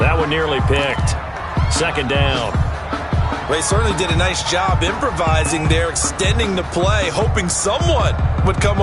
one nearly picked. 2nd down. Well, he certainly did a nice job improvising there, extending the play, hoping someone would come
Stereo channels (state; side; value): identical; both; correlation 1.00